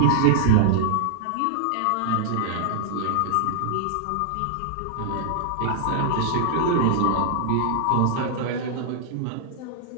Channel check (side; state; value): both; different; correlation -0.01